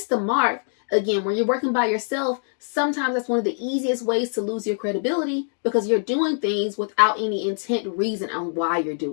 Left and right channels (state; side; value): silent; right; digital silence